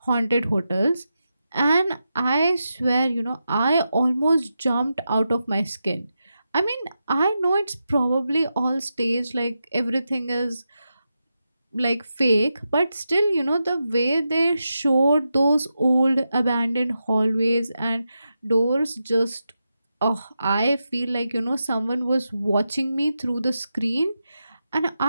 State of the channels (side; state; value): both; inverted; correlation -0.88